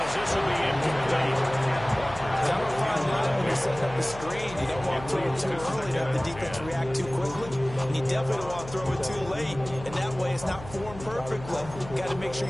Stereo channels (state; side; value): noise; left; hum, 14 dB below the sound